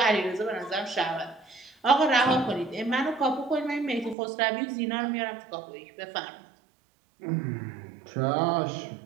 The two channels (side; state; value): left; drops out; at 4.2 s